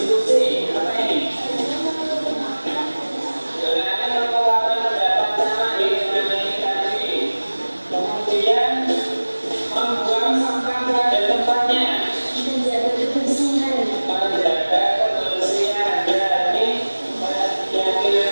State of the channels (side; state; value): both; inverted; correlation -1.00